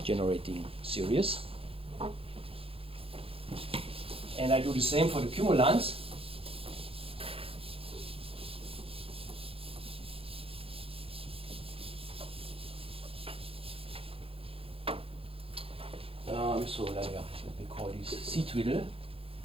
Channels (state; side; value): late; left; 0.27 ms